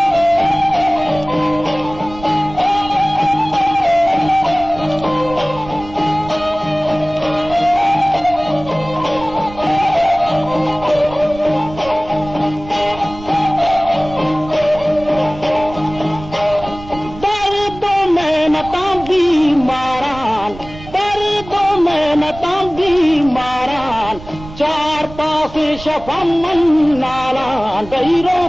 चार पास शफमन नाला दैरो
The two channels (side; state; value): right; noise; rumble, 16 dB below the sound